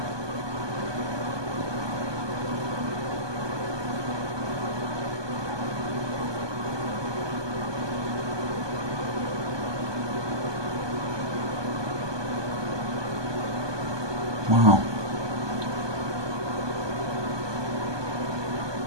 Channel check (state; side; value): late; left; 1.2 ms